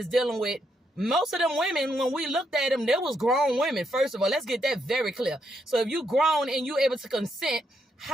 dealing with most of them women. When we looked at them, there was grown women. First of all, let's get that very clear. So if you grown and you able to consent,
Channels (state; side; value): normal; both; correlation 0.78